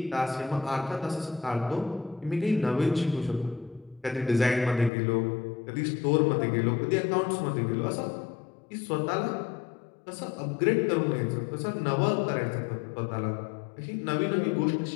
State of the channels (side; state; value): right; drops out; at 4.9 s